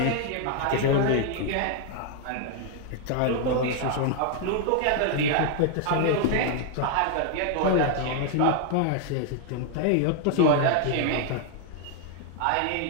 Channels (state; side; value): different; both; correlation 0.00